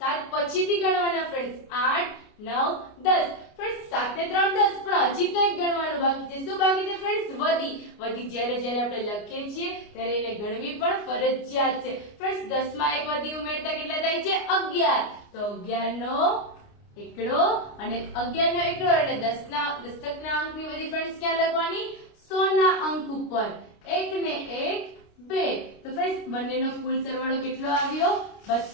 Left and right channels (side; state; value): right; late; 29 ms